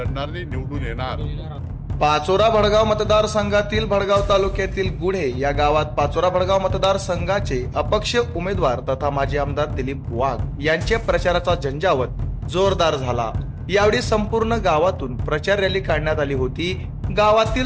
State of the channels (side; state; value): both; identical; correlation 1.00